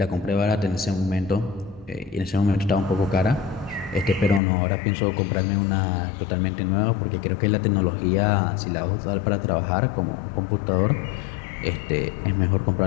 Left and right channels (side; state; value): right; drops out; at 4.4 s